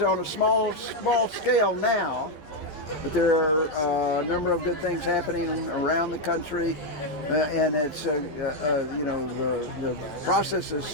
on a small scale now, but there are a number of good things happening around the country, and it's the process is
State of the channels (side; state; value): right; late; 11 ms